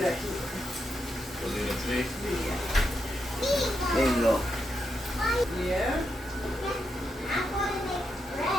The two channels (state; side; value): normal; both; correlation 0.83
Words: there you go.